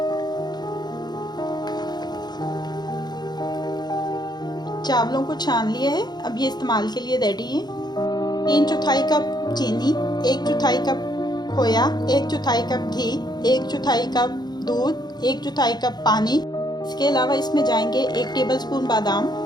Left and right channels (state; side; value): late; right; 0.20 ms